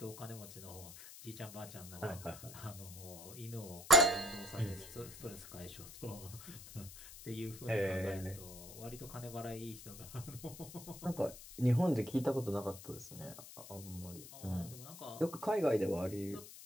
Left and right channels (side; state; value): left; noise; hiss, 14 dB below the sound